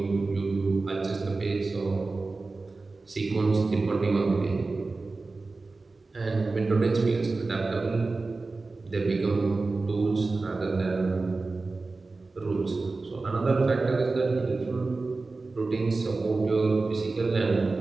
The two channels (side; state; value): left; quieter; 3.7 dB